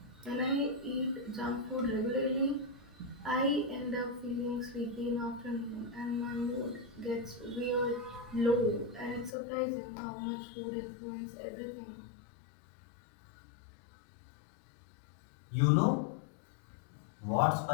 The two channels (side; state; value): right; drops out; at 9.3 s